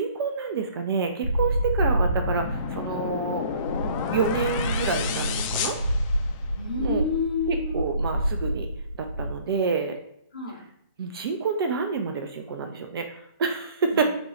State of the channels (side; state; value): both; inverted; correlation -0.53